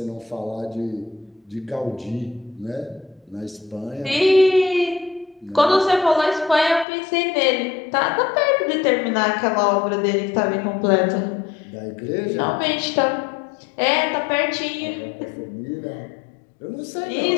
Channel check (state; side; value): drops out; right; at 6.9 s